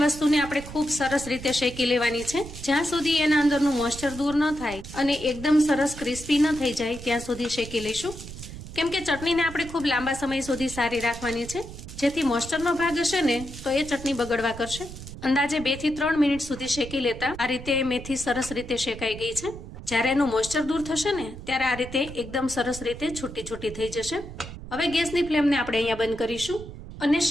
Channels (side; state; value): right; noise; rumble, 12 dB below the sound